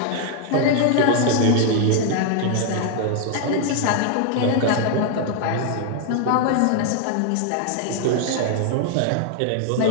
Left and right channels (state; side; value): different; both; correlation 0.00